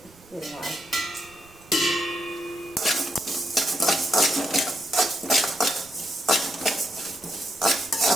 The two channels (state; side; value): noise; right; rumble, 25 dB below the sound